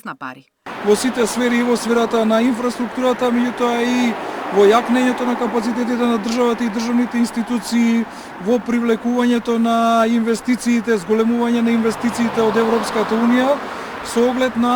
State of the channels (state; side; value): identical; both; correlation 1.00